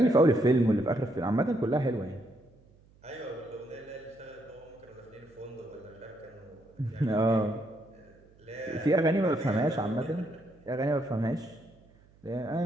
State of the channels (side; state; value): right; noise; hum, 29 dB below the sound